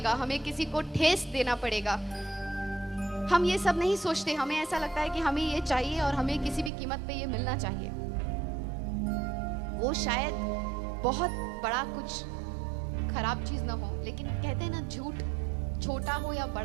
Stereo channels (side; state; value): left; drops out; at 6.7 s